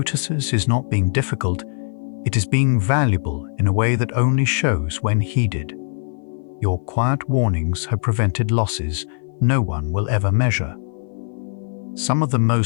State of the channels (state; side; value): silent; right; 55 dB below the other